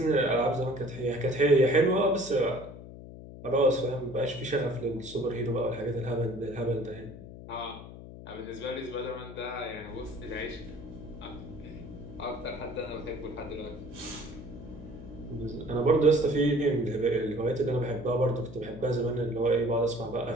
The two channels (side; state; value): left; noise; hum, 14 dB below the sound